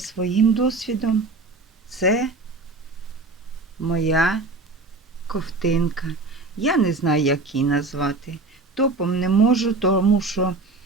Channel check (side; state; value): left; quieter; 3.4 dB